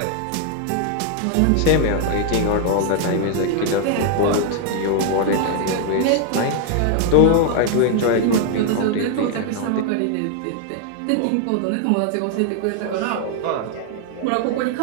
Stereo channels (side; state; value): both; different; correlation 0.00